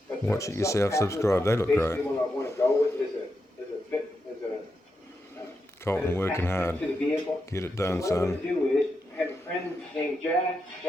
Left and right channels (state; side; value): normal; both; correlation 0.86